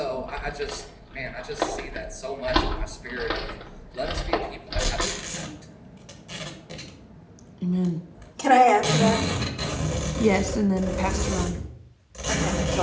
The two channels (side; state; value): both; identical; correlation 1.00